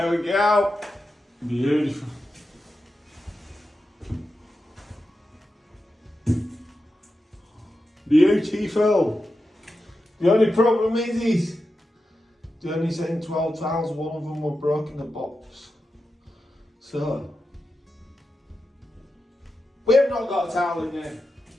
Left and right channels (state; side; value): normal; both; correlation 0.90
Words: we go. Beautiful. Beautiful. The only problem is they only sent 12 tiles, one of them were broken the box. So we have not got a towel in there.